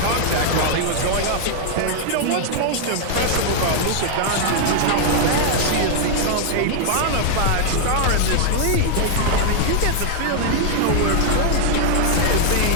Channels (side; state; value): both; different; correlation 0.00